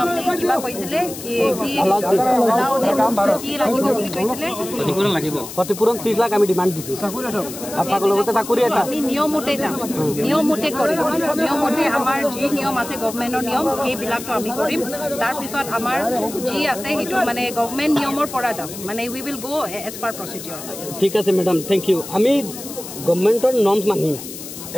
আপনি কিবা কৈছিলে কি কি লাগিব বুলি কৈছিলে ক্ষতিপূরণ 30 লাখ আমি ডিমান্ড দিছি আপনার লগতে চাকরি এটা আপনি নিয়মমতে যাম নিয়মমতে কৰিম নিয়মমতে আমাৰ যি নিয়ম আছে গভৰ্ণমেণ্টৰ নিয়ম এই বিলাকটো আমি কৰিম তাৰ পিছত আমাৰ যি আছে হেতু মানে গভৰ্ণমেণ্ট নিয়মৰ পৰা যাম মানে we will go as per procedure ঠিক আছে ম্যাডাম থ্যাংক ইউ আমি গভৰ্ণমেণ্টৰ নৰ্মস মানিম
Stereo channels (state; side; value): noise; left; hiss, 11 dB below the sound